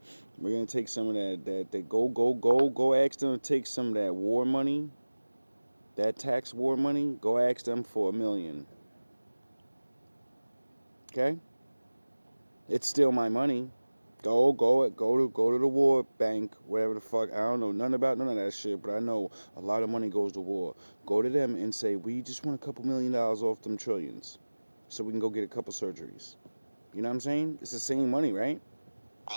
We're gonna take some of that go ask them to take some of that war money, that tax war money, go ask them for $1 million. Okay? It's still my money. Go to the war bank, whatever the fuck. I don't know nothing about none of that shit, but I know a lot of money goes to war. Go to them and say, we just want a couple $1 million off them trillions, so we can go get a couple surgeries. You know what I'm saying? It's the same money, right?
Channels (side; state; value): both; inverted; correlation -1.00